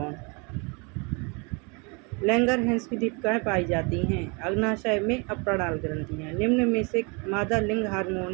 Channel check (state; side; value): quieter; left; 31.4 dB